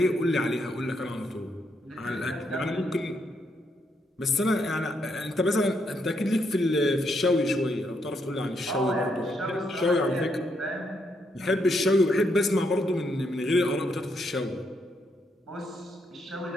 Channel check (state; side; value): normal; both; correlation 0.77